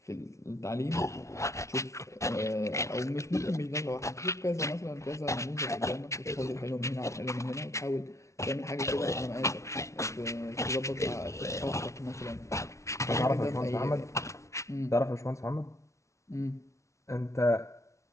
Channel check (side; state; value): right; late; 0.14 ms